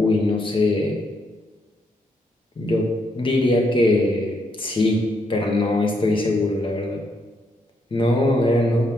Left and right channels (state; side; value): normal; both; correlation 0.76